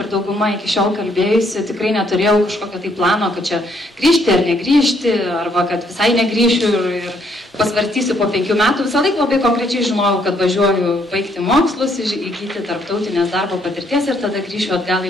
dauguma iki šiol kalbėjusi, tikrai neturėjau kažkokio tai plano, kad čia grįžti ar negrįžti, arba kad visai negrįšiu ir pasvarstysiu po 5 metų. Visą laiką labai konkrečiai žinojau, kad važiuoju baigti mokslus, įgyti tarptautinės darbo patirties ir tada grįšiu atgal į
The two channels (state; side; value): normal; both; correlation 0.70